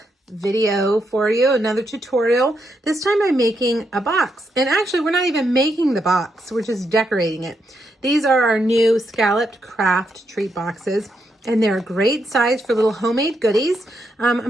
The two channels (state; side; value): normal; both; correlation 0.80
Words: video for you, another tutorial. This time I'm making a box, and actually we're not even making the box, we're just decorating it. These are our new scalloped Kraft treat boxes, and they're a great size for little homemade goodies. I'm